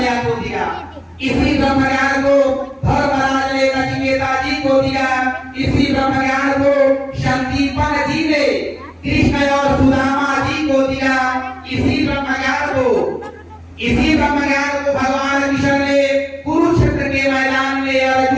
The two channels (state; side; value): identical; both; correlation 1.00